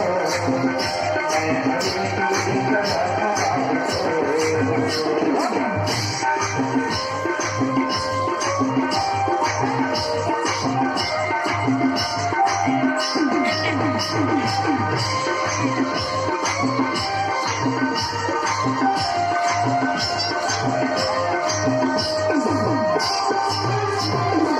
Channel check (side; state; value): both; identical; correlation 1.00